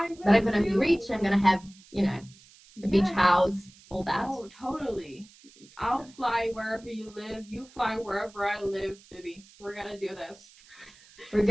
will. But I'm gonna be rich. I'm gonna have, you know, a beach house, all that. Oh, totally. I'll fly wherever you live. You fly wherever I live, baby. We're gonna do this. We're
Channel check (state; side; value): noise; right; hiss, 25 dB below the sound